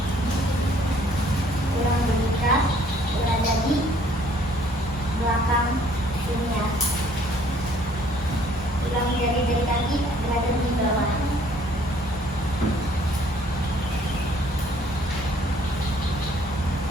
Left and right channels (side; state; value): both; normal; correlation 0.60